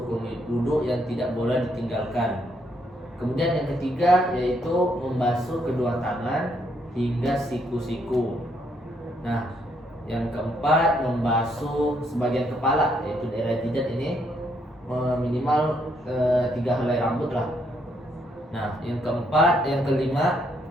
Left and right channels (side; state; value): both; normal; correlation 0.73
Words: wudu yang tidak boleh ditinggalkan. Kemudian yang ketiga yaitu membasuh kedua tangan hingga siku-siku. Nah, yang keempat membasuh sebagian kepala yaitu daerah jidat ini minimal 3 helai rambut lah. Nah, yang kelima